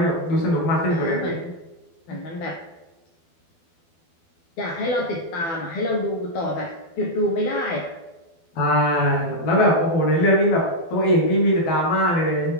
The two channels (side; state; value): right; late; 12 ms